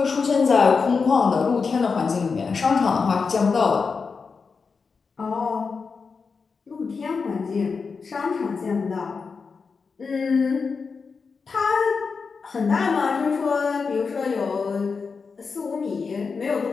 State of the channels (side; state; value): right; quieter; 5.0 dB